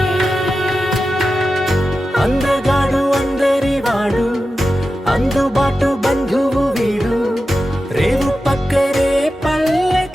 అందగాడు అందరి వాడు అందుబాటు బంధువు వీడు రేవు పక్కరే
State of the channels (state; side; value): normal; both; correlation 0.92